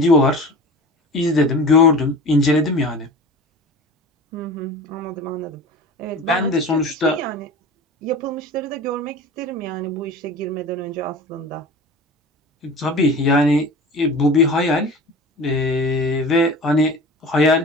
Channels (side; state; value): both; normal; correlation 0.36